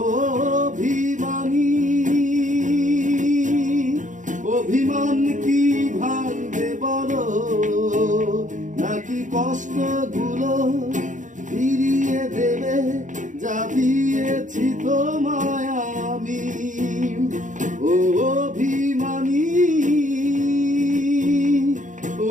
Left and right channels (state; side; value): late; left; 0.37 ms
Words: অভিমানী অভিমান কি ভাঙবে বলো, নাকি কষ্টগুলো ফিরিয়ে দেবে যা দিয়েছি তোমায় আমি। ও অভিমানী